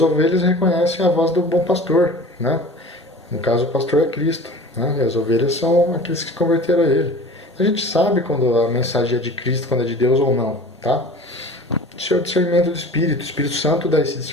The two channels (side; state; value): both; normal; correlation 0.40